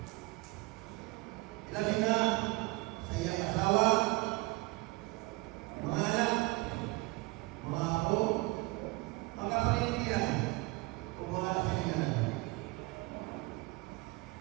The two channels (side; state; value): left; quieter; 23.6 dB